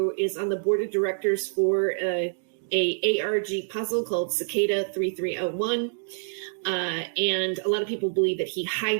is on the board of directors for a ARG puzzle called Cicada 3301. And a lot of people believe that he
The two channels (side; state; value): left; silent; digital silence